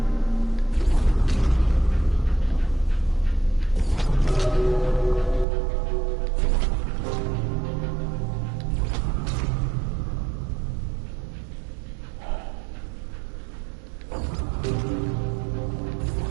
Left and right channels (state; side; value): drops out; left; at 5.5 s